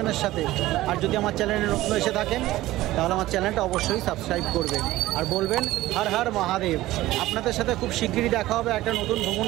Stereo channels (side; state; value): left; quieter; 16.6 dB